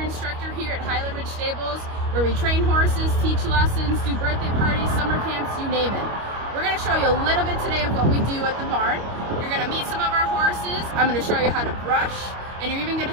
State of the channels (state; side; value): late; left; 25 ms